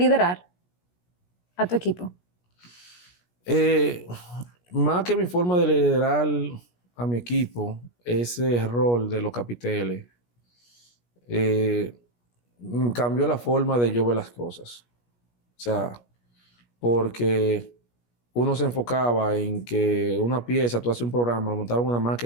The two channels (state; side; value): late; right; 17 ms